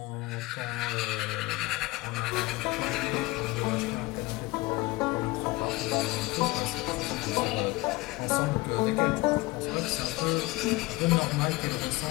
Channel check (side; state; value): right; quieter; 21.7 dB